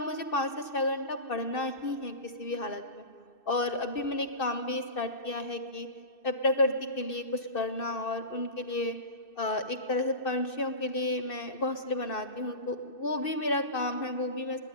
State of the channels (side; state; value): right; late; 2.6 ms